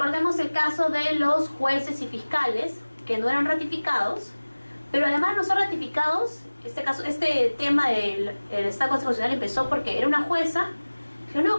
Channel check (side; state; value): both; inverted; correlation -1.00